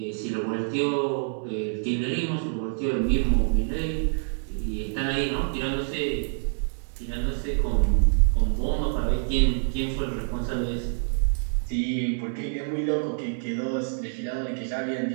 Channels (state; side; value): silent; left; 61 dB below the other